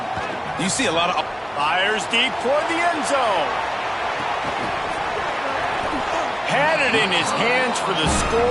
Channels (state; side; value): identical; both; correlation 1.00